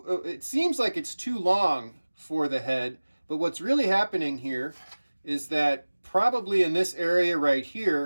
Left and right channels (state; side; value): inverted; both; correlation -1.00